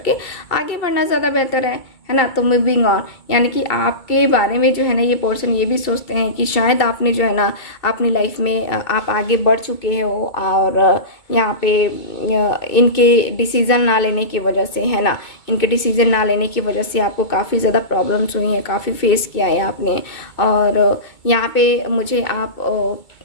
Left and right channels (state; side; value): late; right; 2.2 ms